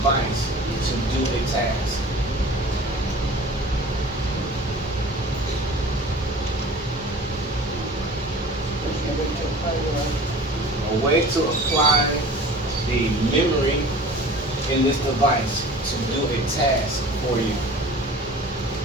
to do a task. A way to apply the memory in this device to do a task for you.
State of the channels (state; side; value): normal; both; correlation 0.42